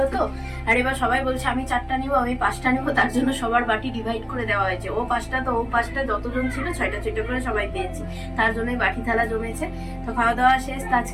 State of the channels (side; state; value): both; identical; correlation 1.00